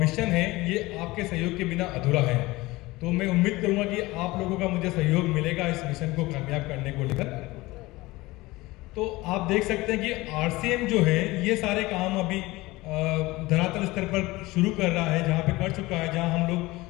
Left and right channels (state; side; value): quieter; right; 20.4 dB